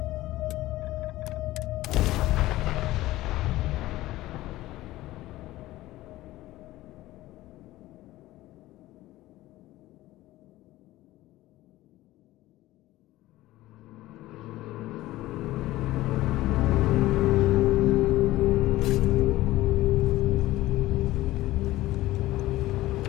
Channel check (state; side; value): quieter; right; 16.8 dB